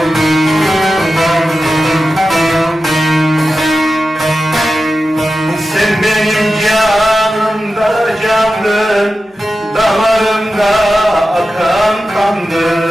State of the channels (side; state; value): both; normal; correlation 0.92